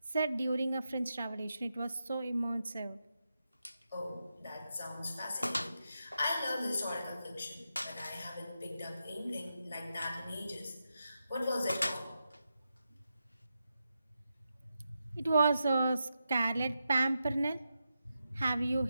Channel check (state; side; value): inverted; both; correlation -0.87